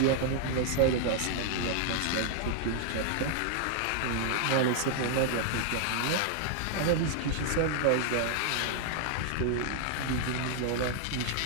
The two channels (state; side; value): different; both; correlation -0.01